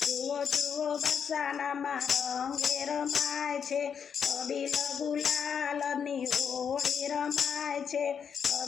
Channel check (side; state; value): right; quieter; 7.2 dB